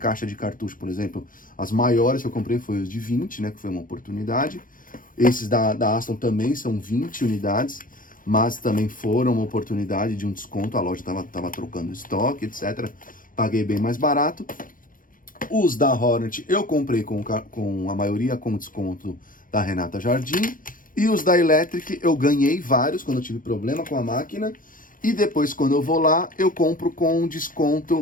de cartucho, por exemplo, as maiores que eu comprei foi os de 20, né, que foi uma oportunidade, esses da Aston também são 20 unidades, mas também foram uma oportunidade de um desconto, a loja tava trocando estoque, etc, paguei bem mais barato. Os da Hornet eu comprei com a maioria com desconto da Renata Jardim. E os da Electric eu ganhei vários quando eu tive problema com a máquina. E depois, quando eu vou lá, eu compro com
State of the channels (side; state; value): right; late; 0.40 ms